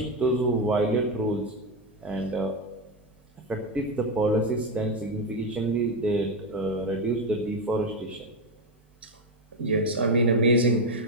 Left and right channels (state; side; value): normal; both; correlation 0.09